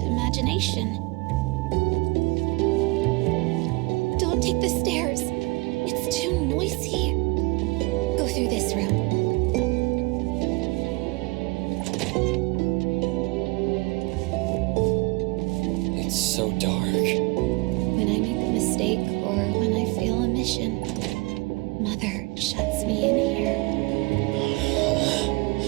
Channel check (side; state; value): left; quieter; 25.1 dB